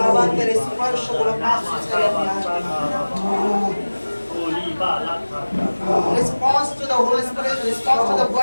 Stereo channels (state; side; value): inverted; both; correlation -1.00